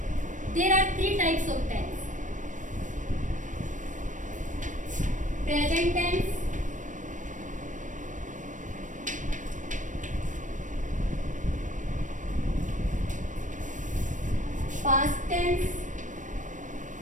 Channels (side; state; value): left; late; 0.37 ms